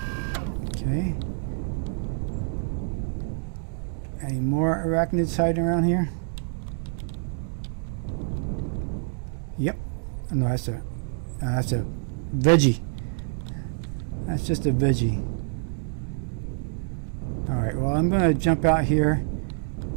Okay. Any more arachnids hiding around here? Yep. Oh, no, that's a veggie. That's just a veggie. Alright, well, I'm going to jump out here,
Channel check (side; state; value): left; silent; 60 dB below the other